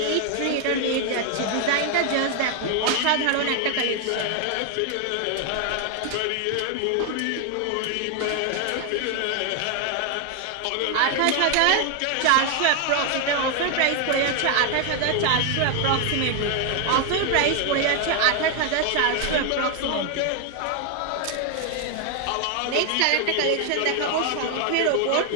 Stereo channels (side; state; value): both; different; correlation 0.00